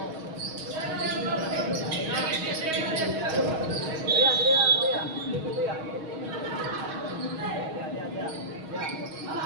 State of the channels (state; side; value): late; left; 6.3 ms